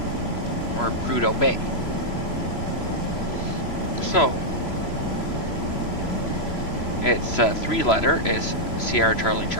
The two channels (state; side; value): late; right; 3.0 ms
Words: or Prudhoe Bay. So it's 3-letter is Sierra Charlie